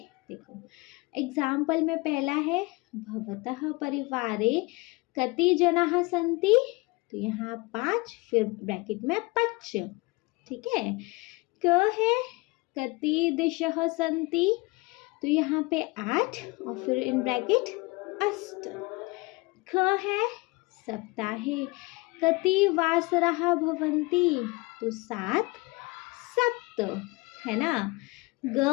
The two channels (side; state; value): right; quieter; 25.1 dB